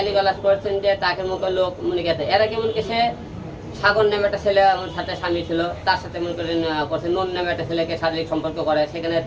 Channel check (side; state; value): both; identical; correlation 1.00